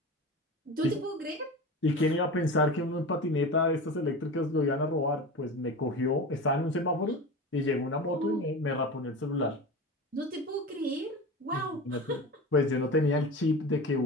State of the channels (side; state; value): both; normal; correlation 0.30